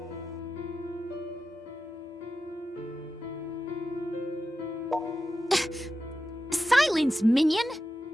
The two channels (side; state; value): both; normal; correlation 0.91